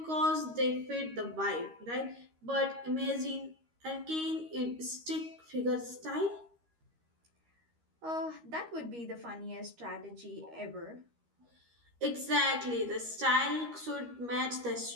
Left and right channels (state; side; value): late; left; 13 ms